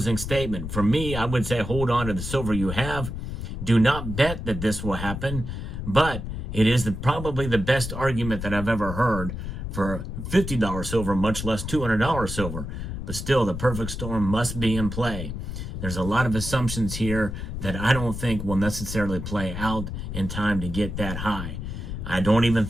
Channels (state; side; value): noise; left; rumble, 6 dB below the sound